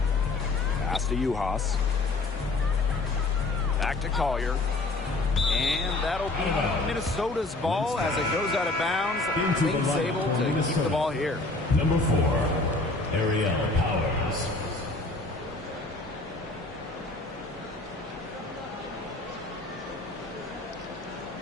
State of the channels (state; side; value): quieter; right; 3.1 dB